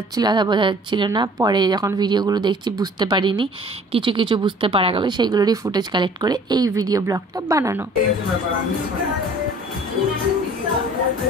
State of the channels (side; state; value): both; normal; correlation 0.51